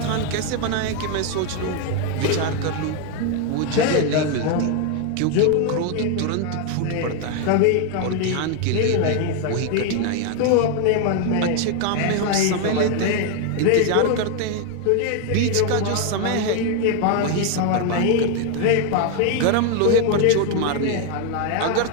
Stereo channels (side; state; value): both; different; correlation 0.01